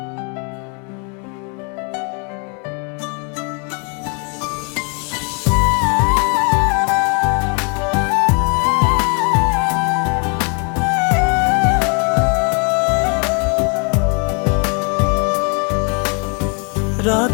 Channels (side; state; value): right; quieter; 36.1 dB